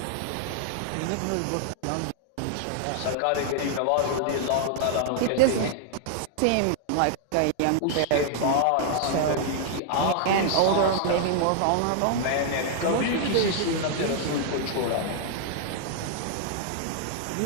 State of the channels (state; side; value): different; both; correlation -0.01